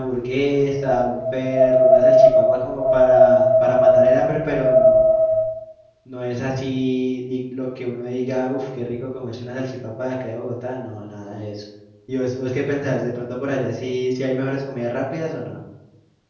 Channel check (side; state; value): both; identical; correlation 1.00